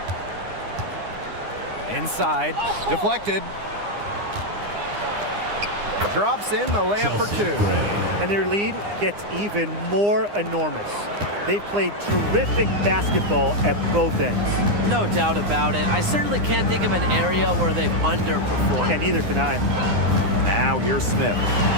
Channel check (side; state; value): left; late; 9.8 ms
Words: Inside. Deflected. Drops in the layup for two. And their lead gets even more enormous. They've played terrific basketball at both ends. No doubt about it. I certainly can't think of an area where they've underperformed. And neither can I. Now here's Smith.